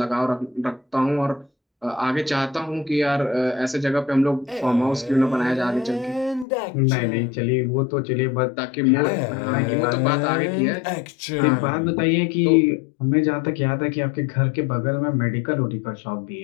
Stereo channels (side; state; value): right; drops out; at 6.5 s